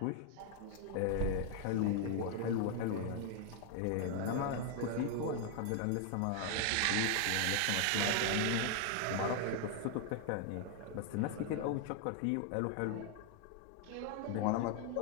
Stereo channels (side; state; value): both; different; correlation 0.00